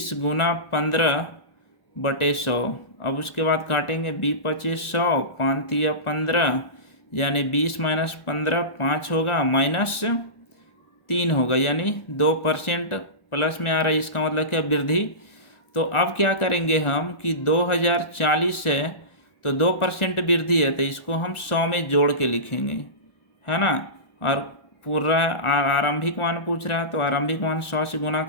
गुना 15/100। अब उसके बाद काटेंगे 20×25 100, 5×3 15, यानी 20 - 15 5 होगा, -3 होगा, यानी 2% प्लस में आ रहा है। इसका मतलब क्या, वृद्धि। तो अब क्या करेंगे हम कि 2040 है तो 2% वृद्धि है तो इसको हम 100 में जोड़ के लिखेंगे, है ना। और पूरा आरंभिक मान पूछ रहा है तो आरंभिक मान 100 से गुना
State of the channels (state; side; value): late; right; 1.4 ms